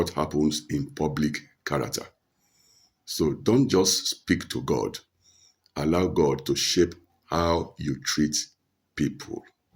happens in public character. So don't just speak to God. Allow God to shape how you treat people.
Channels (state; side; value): identical; both; correlation 1.00